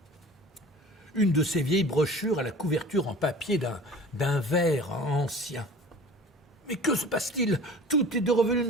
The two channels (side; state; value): both; normal; correlation 0.43